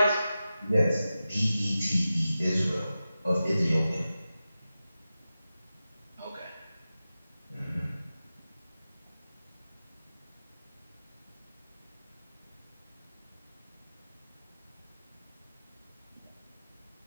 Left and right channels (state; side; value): inverted; both; correlation -0.93